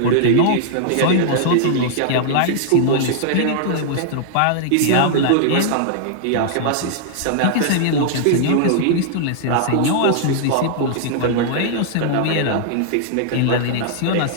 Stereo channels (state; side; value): different; both; correlation -0.01